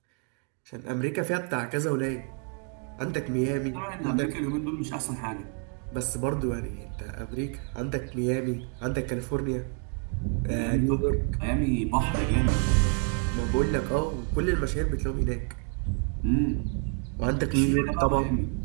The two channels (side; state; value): left; quieter; 39.3 dB